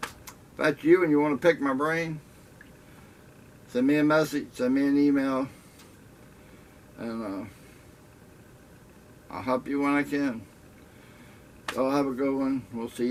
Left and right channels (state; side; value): identical; both; correlation 1.00